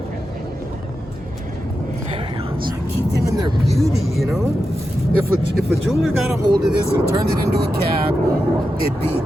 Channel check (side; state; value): both; normal; correlation 0.89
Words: Very awesome. Keep them in their beauty, you know? If a jeweler got a hold of this and turned it into a cab, it'd be...